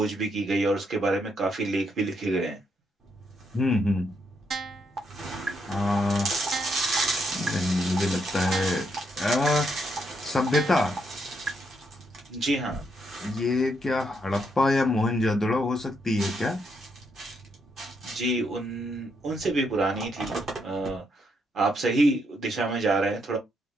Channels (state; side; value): normal; both; correlation 0.77